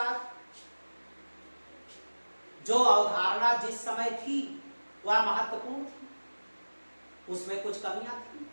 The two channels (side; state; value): both; inverted; correlation -1.00